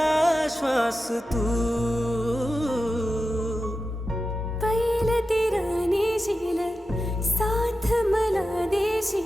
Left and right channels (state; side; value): normal; both; correlation 0.92